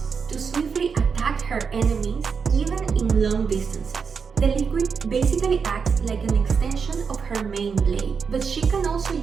to swiftly attack her enemies even in long distances. The liquid basically acts like an extension of her main blade, but she can also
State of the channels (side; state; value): left; quieter; 5.9 dB